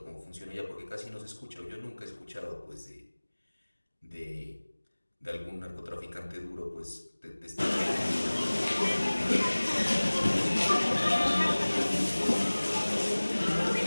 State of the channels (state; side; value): inverted; both; correlation -1.00